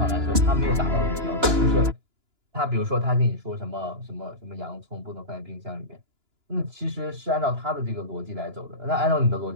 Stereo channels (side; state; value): left; late; 2.9 ms